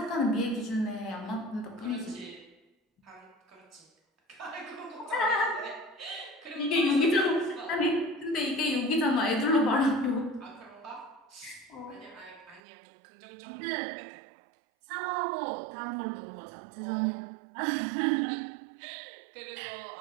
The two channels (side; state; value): left; drops out; at 12.6 s